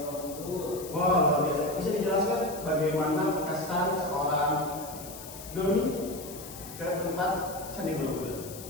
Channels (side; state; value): left; noise; hiss, 14 dB below the sound